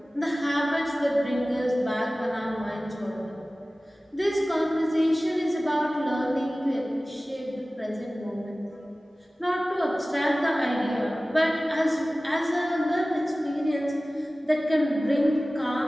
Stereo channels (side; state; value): both; normal; correlation 0.97